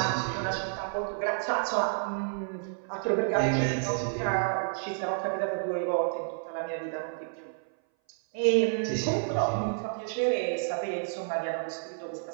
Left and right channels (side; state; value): left; silent; 58 dB below the other